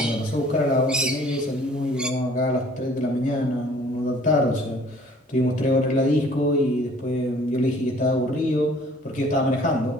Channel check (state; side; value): normal; both; correlation 0.54